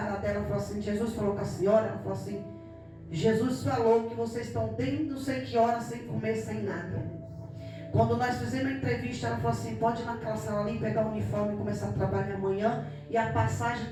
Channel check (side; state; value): both; identical; correlation 1.00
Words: dela e falei assim, Jesus falou com a senhora? Ela falou assim, Jesus falou que vocês estão desde não sei que hora sem comer, sem nada. Quando nós fizemos a entrevista, ela falou assim, pode ir naquela sala ali, pegar o uniforme e começar a trabalhar amanhã. E a passagem